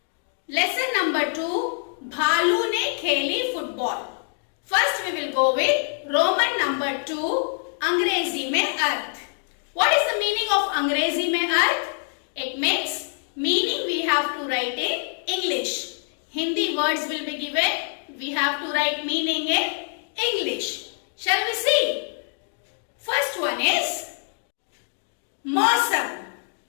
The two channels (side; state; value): right; silent; digital silence